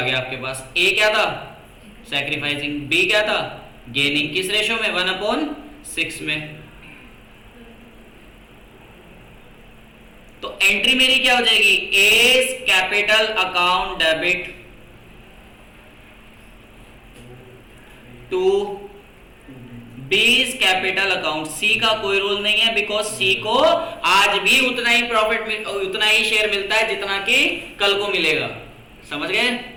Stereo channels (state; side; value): identical; both; correlation 1.00